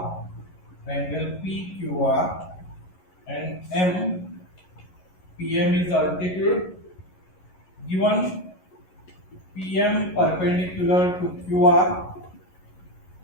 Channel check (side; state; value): right; late; 11 ms